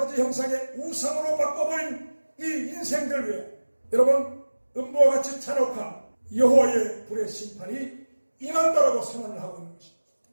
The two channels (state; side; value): inverted; both; correlation -1.00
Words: 형상의 우상으로 바꿔버린 이 인생들 위해 여러분, 음부와 같이 잔혹한 여호와의 불의 심판이 임한다라고 선언을 하고 있는 것입니다.